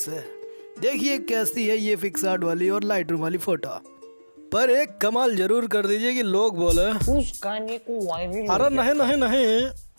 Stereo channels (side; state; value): both; inverted; correlation -1.00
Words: देखिए कैसी है ये पिक्सार्ट वाली और लाइट रूम वाली फोटो। पर एक कमाल जरूर कर दीजिए कि लोग बोले उस गाने को वायरल। अरे नहीं नहीं नहीं,